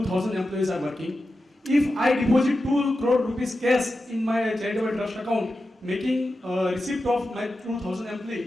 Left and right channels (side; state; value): both; normal; correlation 0.91